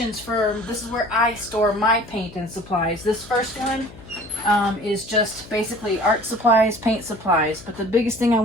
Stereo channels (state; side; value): noise; left; hum, 19 dB below the sound